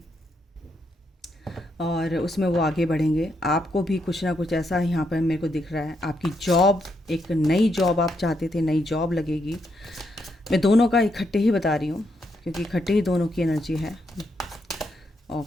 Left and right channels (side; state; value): both; normal; correlation 0.79